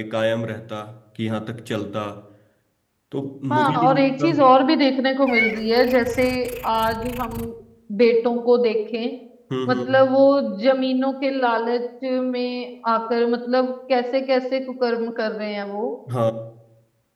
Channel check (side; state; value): both; identical; correlation 1.00